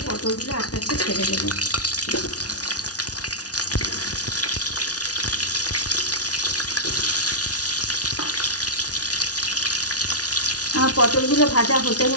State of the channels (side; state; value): right; late; 0.68 ms